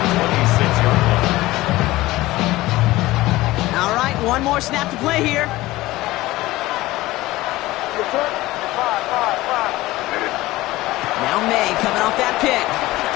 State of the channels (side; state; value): right; quieter; 18.1 dB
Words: 26-yard line. All right, one more snap to play here. Now May coming off that pick.